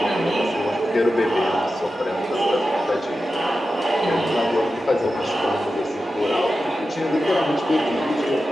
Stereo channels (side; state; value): both; normal; correlation 0.92